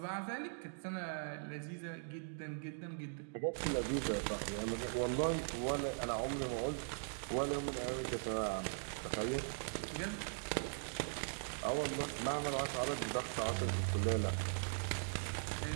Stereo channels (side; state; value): left; silent; digital silence